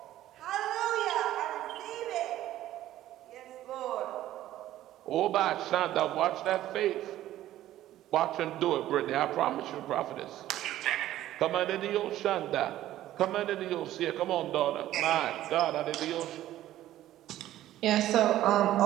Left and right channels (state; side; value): quieter; left; 13.7 dB